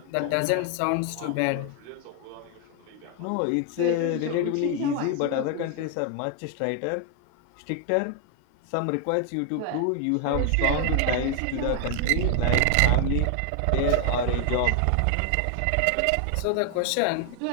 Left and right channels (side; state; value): both; different; correlation 0.00